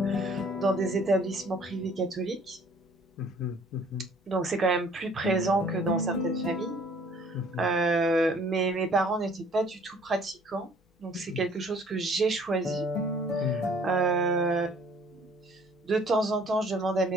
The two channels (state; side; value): normal; both; correlation 0.56